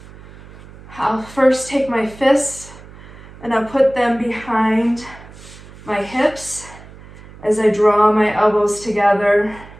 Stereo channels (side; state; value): right; noise; hum, 19 dB below the sound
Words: I'll first take my fists and I'll put them behind my hips as I draw my elbows together,